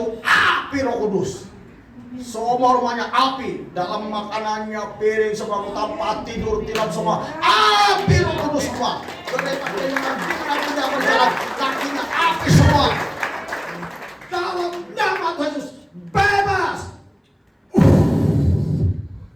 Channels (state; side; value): identical; both; correlation 1.00